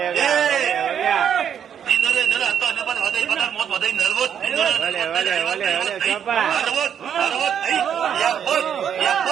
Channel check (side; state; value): left; quieter; 8.6 dB